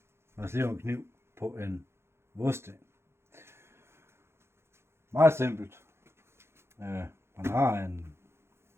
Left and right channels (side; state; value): left; late; 0.12 ms